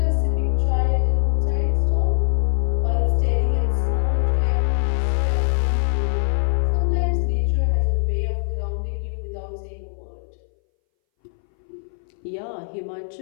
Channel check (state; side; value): silent; right; 62 dB below the other